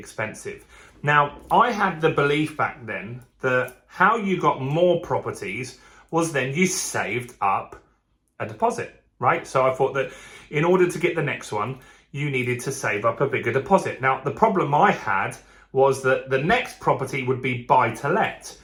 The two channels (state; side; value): identical; both; correlation 1.00